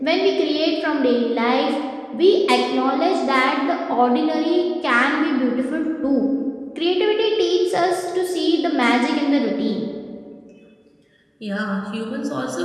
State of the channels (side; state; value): both; identical; correlation 1.00